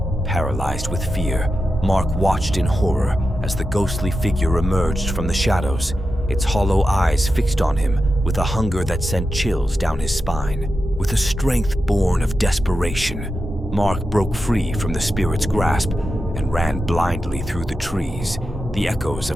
Paralyzed with fear, Mark watched in horror as the ghostly figure emerged from the shadows, its hollow eyes fixed on him with a hunger that sent chills down his spine. With a strength born of desperation, Mark broke free from the spirit's grasp and ran blindly through the trees, the echoes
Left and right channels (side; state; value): both; normal; correlation 0.90